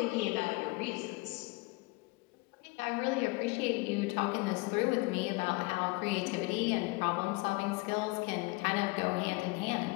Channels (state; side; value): quieter; right; 25.0 dB